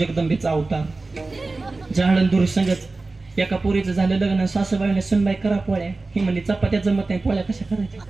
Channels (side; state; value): left; quieter; 3.5 dB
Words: अवतार झाडण दूर संगत एका पोरीचं झालं लग्न सासूबाईने सुनबाई करा पोळ्या ही म्हणली चपात्या जमत नाही पोळ्या कशा